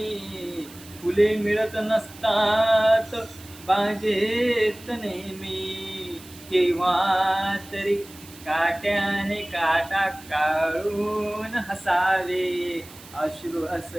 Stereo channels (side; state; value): right; noise; hiss, 20 dB below the sound